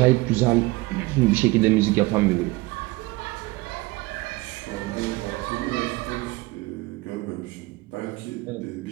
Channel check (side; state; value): left; quieter; 21.6 dB